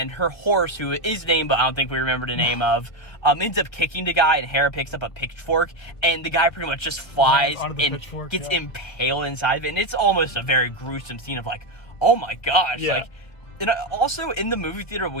her horse, who is named, but I don't think we remember the name of, ends up kicking the guy, and Hera picks up a pitchfork, and the guy pretty much just flies and gets impaled inside of it. And it's almost a very gruesome scene of like, oh my gosh, like. And also, in the movie theater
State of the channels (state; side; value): late; right; 1.5 ms